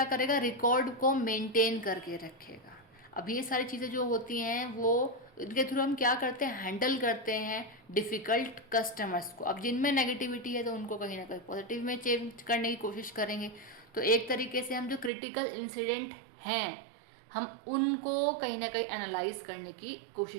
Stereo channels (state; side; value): drops out; left; at 15.1 s